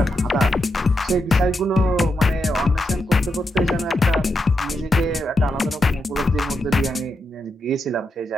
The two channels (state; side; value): normal; both; correlation 0.84